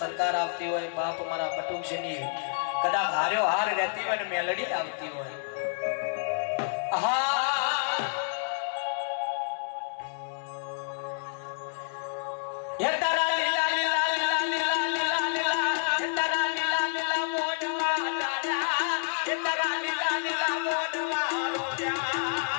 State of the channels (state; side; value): silent; right; 59 dB below the other